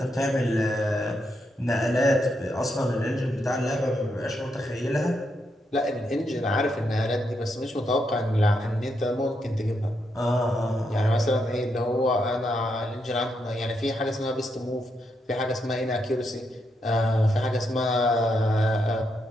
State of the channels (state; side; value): normal; both; correlation 0.81